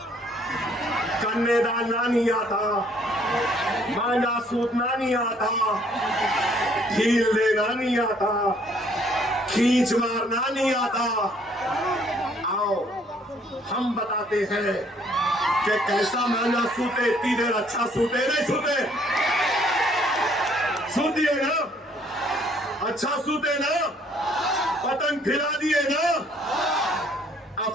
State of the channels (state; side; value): normal; both; correlation 0.63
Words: कन्यादान नहीं आता, मांझा सूतना नहीं आता, ढील देना नहीं आता, खींच मारना नहीं आता। आओ हम बताते हैं कि कैसा मांझा सूते, इतनी देर अच्छा सूते नहीं सूते, सूतिए ना, अच्छा सूते ना, पतंग फिरा दिए ना। अब